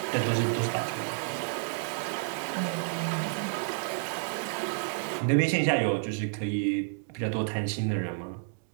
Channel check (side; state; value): left; silent; 58 dB below the other